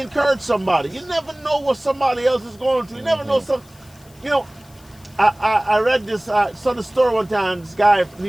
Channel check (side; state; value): left; noise; hiss, 27 dB below the sound